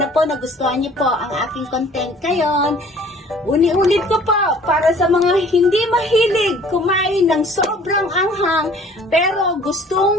po nagustuhan niyo po ang aking content ngayon. Uni-ulit ko po para sa mga hindi mahilig kumain ng sobrang anghang pero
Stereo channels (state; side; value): normal; both; correlation 0.52